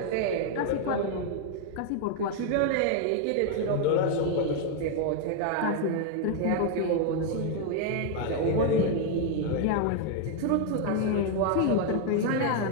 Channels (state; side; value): different; both; correlation 0.01